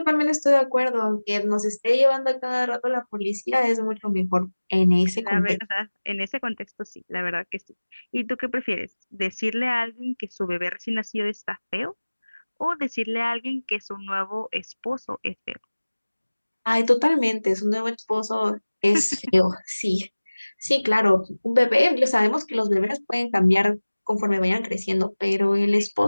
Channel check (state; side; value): inverted; both; correlation -1.00